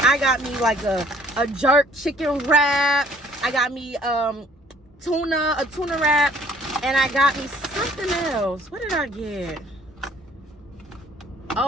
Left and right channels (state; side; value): normal; both; correlation 0.58